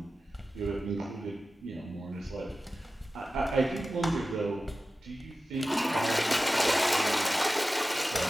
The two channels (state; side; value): normal; both; correlation 0.95